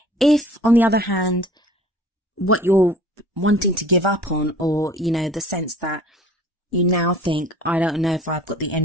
If, on the other hand, what you're wanting to give up on, or, the sense that you now think, I don't know if I've got the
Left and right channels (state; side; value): normal; both; correlation 0.48